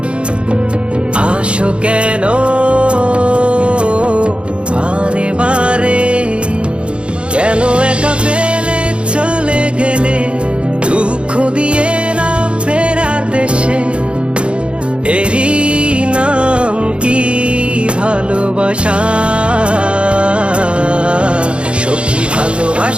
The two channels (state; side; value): late; left; 0.058 ms